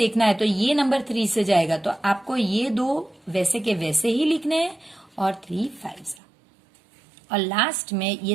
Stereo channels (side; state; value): left; drops out; at 6.2 s